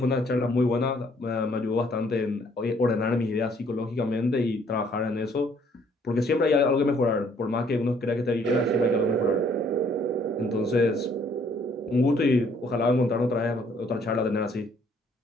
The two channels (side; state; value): both; normal; correlation 0.63